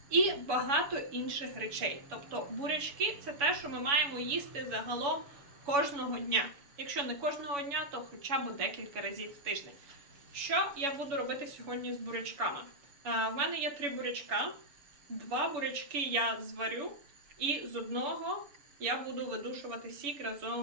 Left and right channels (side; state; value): left; late; 7.1 ms